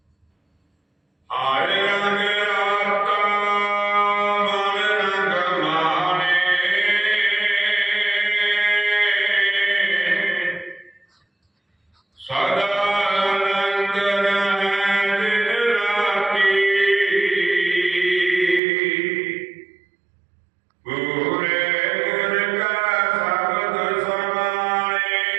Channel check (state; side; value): drops out; left; at 18.6 s